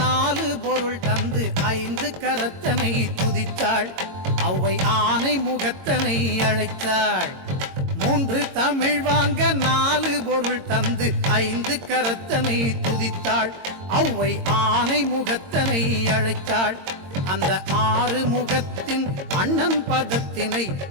நாலு பொருள் தந்து ஐந்து கரத்தனை துதித்தாள் அவ்வை ஆனை முகத்தனை அழைத்தாள். மூன்று தமிழ் வாங்க நாலு பொருள் தந்து ஐந்து கரத்தனை துதித்தாள் அவ்வை ஆனை முகத்தனை அழைத்தாள். அந்த ஆறு முகத்தின் அண்ணன் பதத்தினை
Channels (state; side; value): late; left; 22 ms